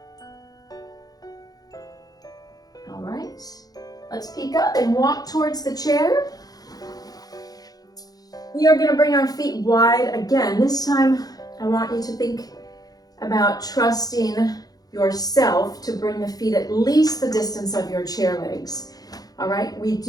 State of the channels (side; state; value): right; late; 0.18 ms